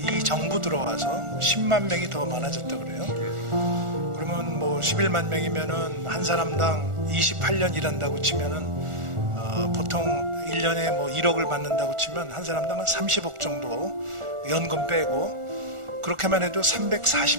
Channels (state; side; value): late; left; 1.4 ms